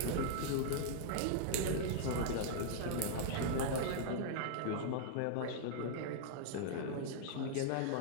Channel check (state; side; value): different; both; correlation -0.02